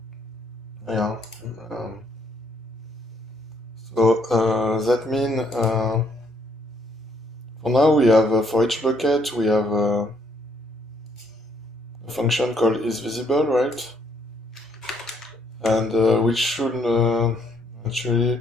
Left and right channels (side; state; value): both; normal; correlation 0.69